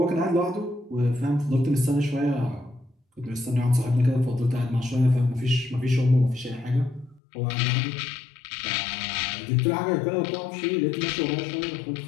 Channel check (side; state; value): right; drops out; at 7.2 s